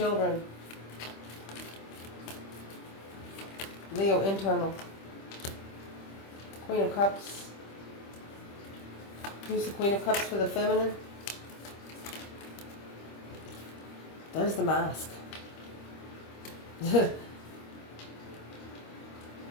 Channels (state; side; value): late; right; 25 ms